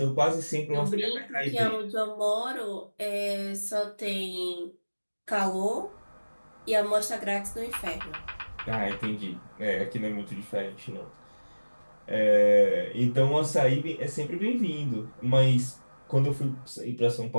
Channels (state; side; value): inverted; both; correlation -1.00